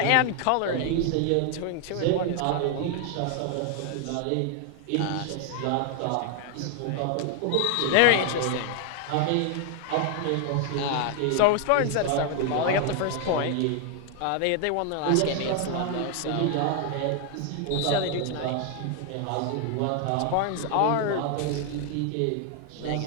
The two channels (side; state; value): both; different; correlation 0.00